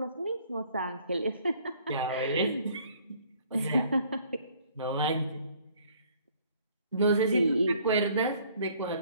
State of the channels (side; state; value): both; inverted; correlation -0.59